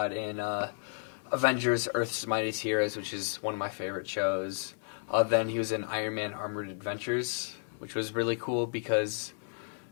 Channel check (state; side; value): silent; right; digital silence